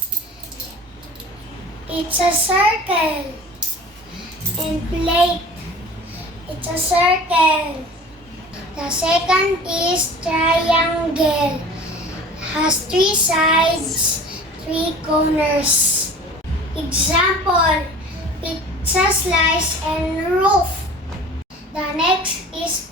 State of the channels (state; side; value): normal; both; correlation 0.42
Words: It's a circle. And plate. It's a circle. The second is triangle. Has 3 sides, 3 corners. Example, pizza slice and roof. The next is